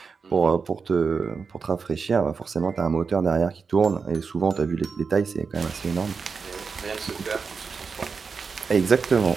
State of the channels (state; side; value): quieter; left; 5.2 dB